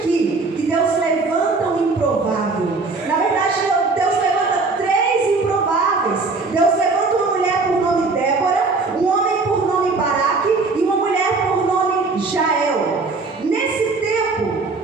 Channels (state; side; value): quieter; left; 3.9 dB